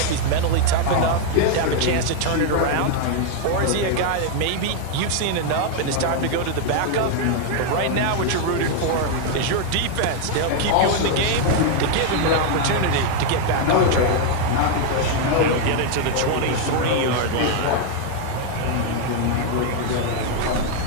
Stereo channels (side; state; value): both; different; correlation 0.00